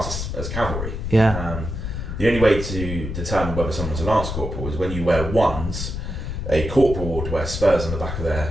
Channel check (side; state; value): left; noise; rumble, 5 dB below the sound